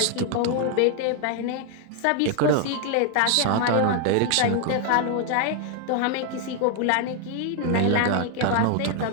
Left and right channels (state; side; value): different; both; correlation 0.00